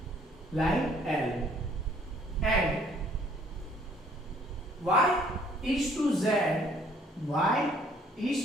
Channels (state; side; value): normal; both; correlation 0.60